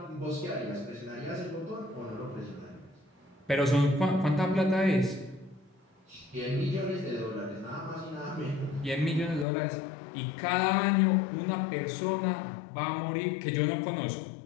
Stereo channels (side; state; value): right; drops out; at 9.5 s